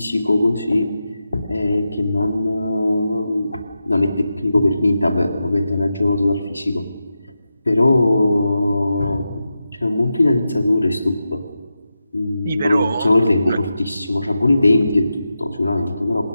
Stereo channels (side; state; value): both; inverted; correlation -0.90